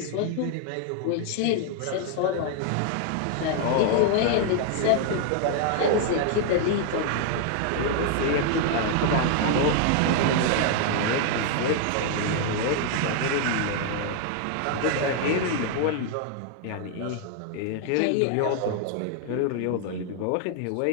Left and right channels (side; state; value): both; different; correlation 0.00